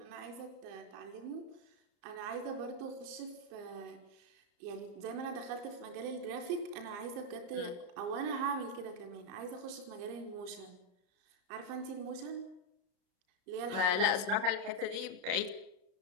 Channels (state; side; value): late; left; 34 ms